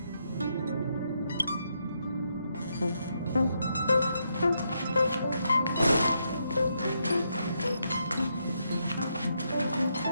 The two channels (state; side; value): inverted; both; correlation -0.79